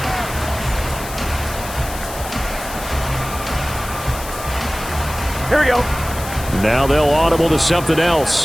Here we go. Now they'll audible to something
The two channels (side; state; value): left; noise; hiss, 12 dB below the sound